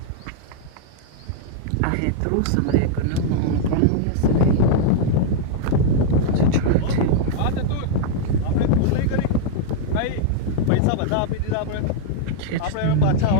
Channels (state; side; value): different; both; correlation -0.01